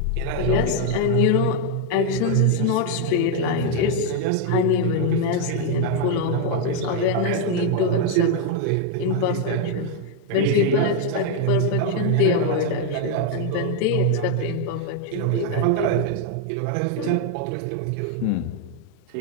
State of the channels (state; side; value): different; both; correlation 0.00